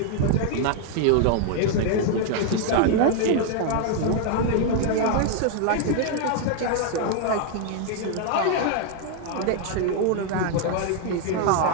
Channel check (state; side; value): different; both; correlation 0.00